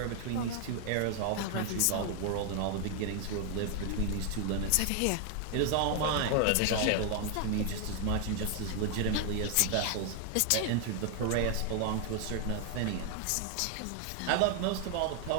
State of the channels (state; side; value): different; both; correlation 0.00